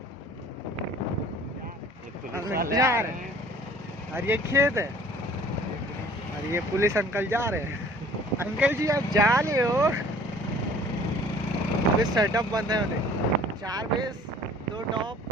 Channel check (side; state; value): both; normal; correlation 0.51